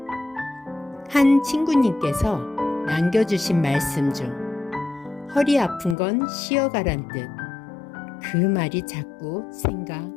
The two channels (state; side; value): drops out; right; at 6.0 s